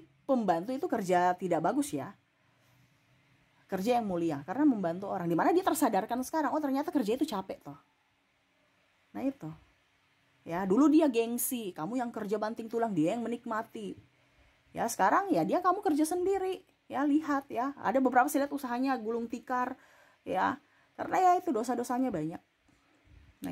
pembantu itu kerja tidak bagus ya. Kerja yang mulia karena membantu orang, dimana dia tersadarkan sekarang, oh ternyata kerja itu capek toh. Nah itu ya, dulu dia gengsi, kamu yang kerja banting tulang, dia yang menikmati ya. Sekarang ya kamu kerja sendiri ya. Lihat ya, ada beberapa saya lihat usahanya gulung tikar ya, karena ya itu dosa-dosanya banyak. Nah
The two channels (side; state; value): both; identical; correlation 1.00